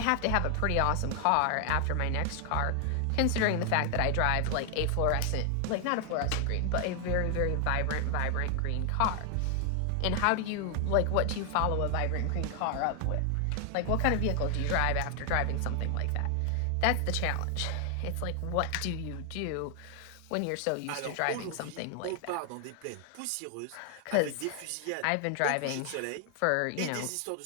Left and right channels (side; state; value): both; different; correlation 0.00